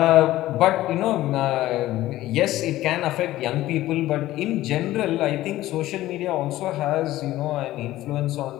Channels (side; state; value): right; quieter; 15.6 dB